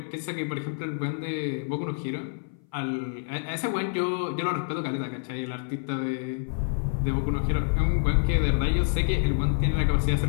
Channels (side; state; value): right; silent; 57 dB below the other